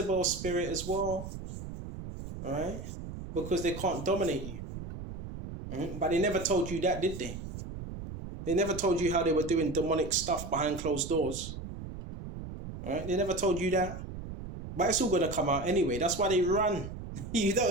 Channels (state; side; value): noise; right; rumble, 9 dB below the sound